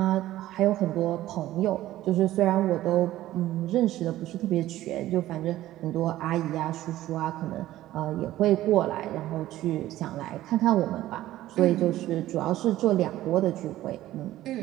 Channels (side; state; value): left; quieter; 14.8 dB